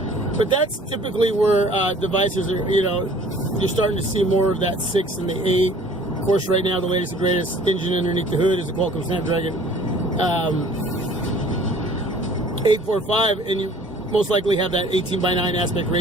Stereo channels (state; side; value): normal; both; correlation 0.51